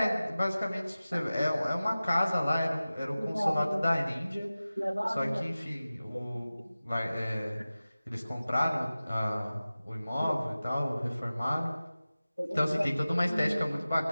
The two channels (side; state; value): both; inverted; correlation -0.96